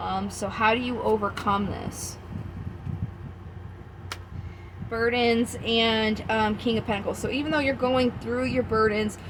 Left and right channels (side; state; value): both; identical; correlation 1.00